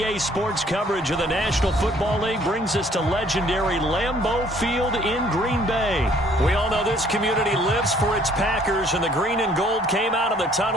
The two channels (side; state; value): both; normal; correlation 0.60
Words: Sports coverage of the National Football League brings us to legendary Lambeau Field in Green Bay. We all know this community lives for its Packers, and the green and gold came out of the